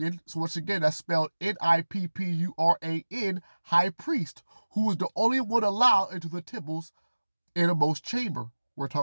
so once again, that's spelled Nippuran, high priest, who was the only one allowed into the temple's innermost chamber. We're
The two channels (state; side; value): inverted; both; correlation -1.00